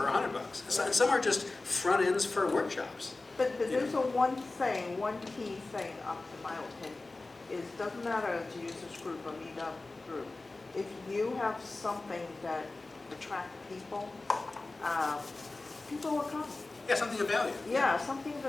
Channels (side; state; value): right; quieter; 3.3 dB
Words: $100. And some are just front ends for workshops. But there's a one key thing, up to my opinion, is doesn't matter if it's a users group or meetup group. If you have something that attracts people, people will come. Yeah, something of value. Yeah, something